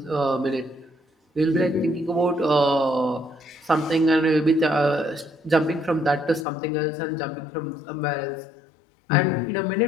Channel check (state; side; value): drops out; right; at 6.5 s